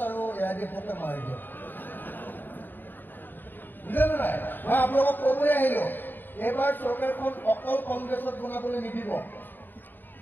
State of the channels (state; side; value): late; right; 0.092 ms